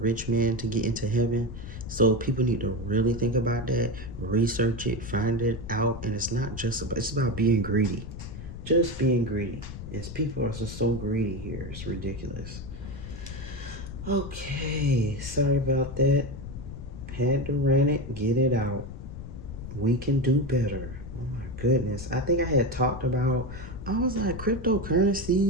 man to get into heaven. So people need to really think about that, research it, find it out, and it's about being greedy. Just being greedy. Yes, people are just so greedy here. It's ridiculous. Okay, sorry about that. Had to rant it, get it out. We can do better. Oh my goodness. I think I had talked about, I was like,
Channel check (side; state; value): left; noise; rumble, 10 dB below the sound